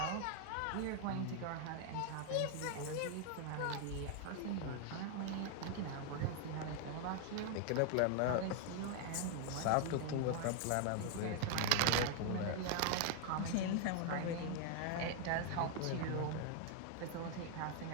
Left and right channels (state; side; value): different; both; correlation 0.01